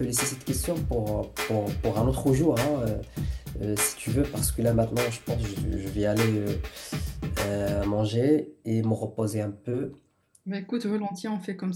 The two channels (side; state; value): both; identical; correlation 1.00